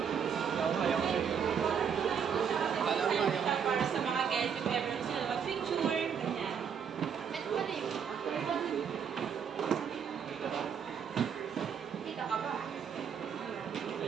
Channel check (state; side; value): quieter; left; 7.4 dB